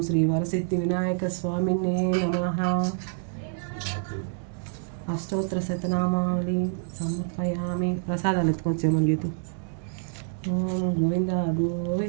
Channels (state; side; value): silent; left; 60 dB below the other